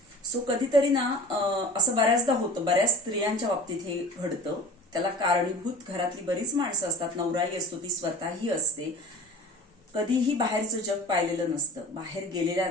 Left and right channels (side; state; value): both; normal; correlation 0.39